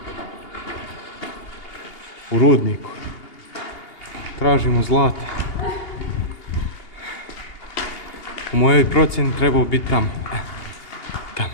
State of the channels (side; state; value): right; late; 2.8 ms